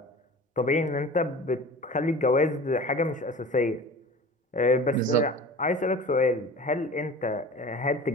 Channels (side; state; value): both; normal; correlation 0.39